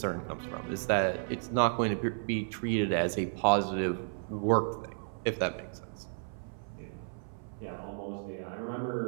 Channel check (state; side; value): silent; left; 56 dB below the other